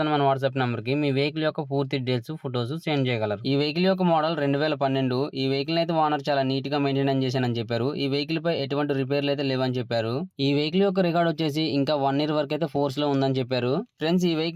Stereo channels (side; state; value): both; identical; correlation 1.00